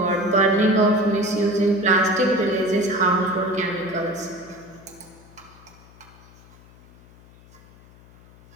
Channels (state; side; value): noise; left; hum, 25 dB below the sound